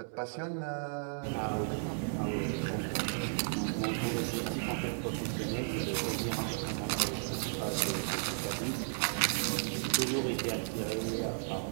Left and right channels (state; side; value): silent; left; 55 dB below the other